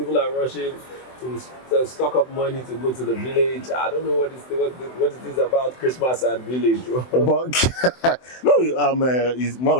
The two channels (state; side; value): late; right; 24 ms